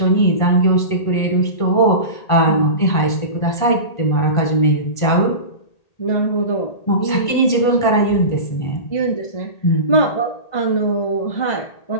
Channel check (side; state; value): right; late; 1.8 ms